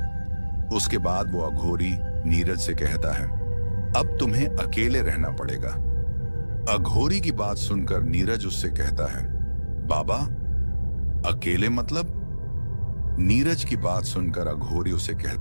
उसके बाद वो अघोरी नीरज से कहता है, अब तुम्हें अकेले रहना पड़ेगा। अघोरी की बात सुनकर नीरज उससे कहता है, बाबा, अकेले मतलब? नीरज की बात सुनकर अघोरी उसे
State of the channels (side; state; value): both; inverted; correlation -1.00